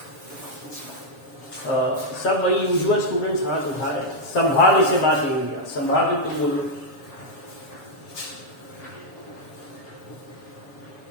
सब वही यूजुअल स्टूडेंट्स हाथ उठा रहे हैं। संभाव्य से बात नहीं हुई, संभाव्य तुम बोलो।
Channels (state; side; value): late; right; 7.1 ms